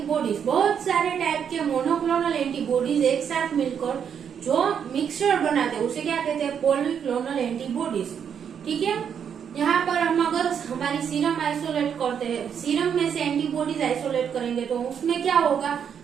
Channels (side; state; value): left; quieter; 7.8 dB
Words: बहुत सारे टाइप के मोनोक्लोनल एंटीबॉडीज एक साथ मिलकर जो मिक्सचर बनाते हैं उसे क्या कहते हैं, पॉलीक्लोनल एंटीबॉडीज। ठीक है। यहाँ पर हम अगर हमारी सीरम आइसोलेट करते हैं, सीरम में से एंटीबॉडीज आइसोलेट करेंगे तो उसमें क्या होगा,